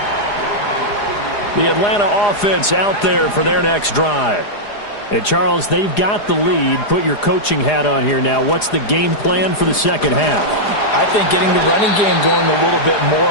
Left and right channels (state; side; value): late; right; 4.9 ms